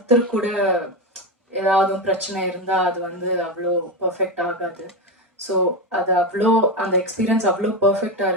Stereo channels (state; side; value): normal; both; correlation 0.14